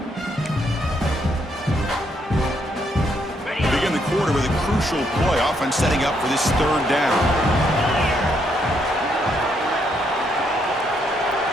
Begin the quarter with a crucial play, often setting up for this 3rd down.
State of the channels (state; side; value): normal; both; correlation 0.74